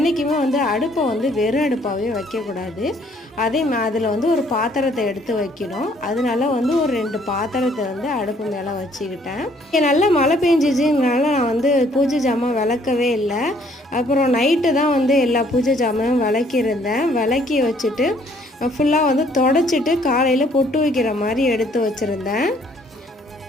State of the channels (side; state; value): both; normal; correlation 0.63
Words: அடுப்பை வெறும் அடுப்பாகவே வைக்கக்கூடாது. அதில் ஒரு பாத்திரத்தை எடுத்து வைக்கணும். அதனால ஒரு 2 பாத்திரத்தை அடுப்பு மேலே வச்சுக்கிட்டேன். நல்லா மழை பெஞ்சிச்சுனால நான் பூஜை ஜாமான் விளக்கவே இல்லை. அப்புறம் நைட்டு தான் எல்லா பூஜை ஜாமானும் விளக்கியிருந்தேன். விளக்கி வச்சுட்டு ஃபுல்லாக தொடச்சிட்டு காலையில் பொட்டு வைக்கிற மாதிரி எடுத்து வச்சுருந்தேன்.